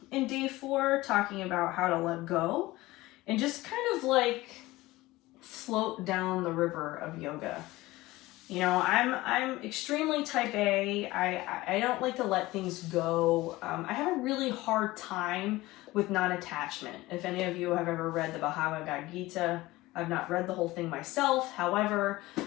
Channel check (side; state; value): right; quieter; 18.9 dB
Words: in day 4, talking about how to let go and just kind of like float down the river of yoga. You know, I'm extremely type A. I don't like to let things go. I have a really hard time with non-attachment. If any of you have ever read the Bhagavad Gita, I've not read the whole thing myself. However,